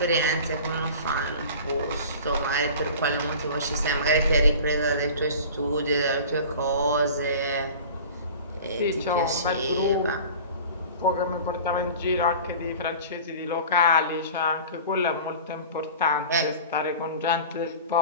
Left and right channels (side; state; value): both; inverted; correlation -0.39